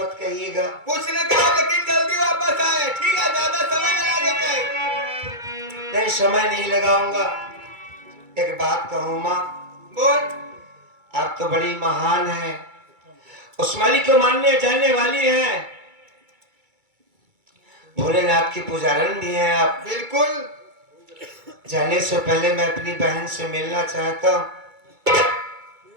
कहिएगा। कुछ न कहा लेकिन जल्दी वापस वापस आए, ठीक है? ज्यादा समय न लगे कहीं। नहीं, समय नहीं लगाऊंगा। एक बात कहूँ माँ, बोल। आप तो बड़ी महान हैं, उस मालिक को मानने जानने वाली हैं, भोलेनाथ की पुजारन भी हैं आप। बिल्कुल। जाने से पहले मैं अपनी बहन से मिलना चाहता हूँ।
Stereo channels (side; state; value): left; late; 2.3 ms